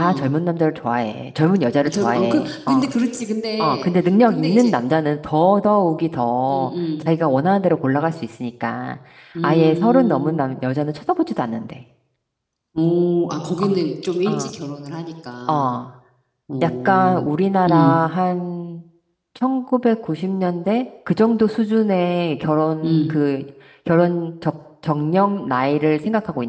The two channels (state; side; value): identical; both; correlation 1.00